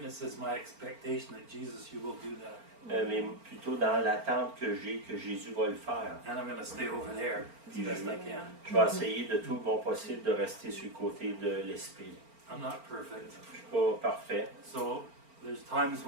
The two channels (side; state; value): left; late; 4.4 ms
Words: is my expectation that Jesus, you will do that. mais plutôt dans l'attente que j'ai que Jésus va le faire. And I'm going to stay over there as best I can. Je vais essayer de tout mon possible de rester sur le côté de l'esprit. I'm not perfect. Je suis pas parfait. So there's times